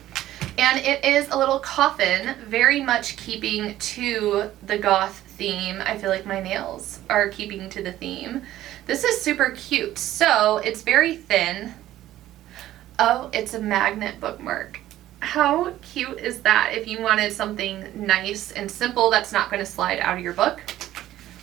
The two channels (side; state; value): left; quieter; 13.9 dB